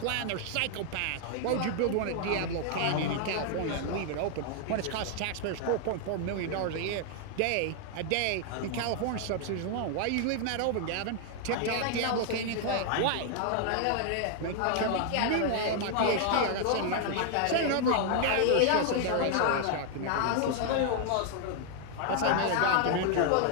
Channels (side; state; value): both; different; correlation 0.00